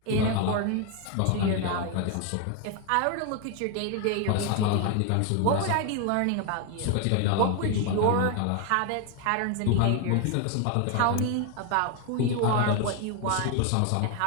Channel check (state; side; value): different; both; correlation 0.01